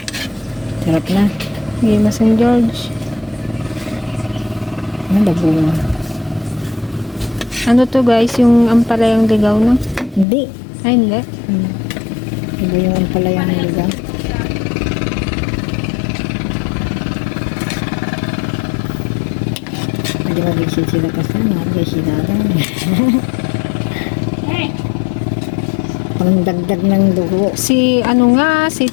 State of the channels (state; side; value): drops out; right; at 10.2 s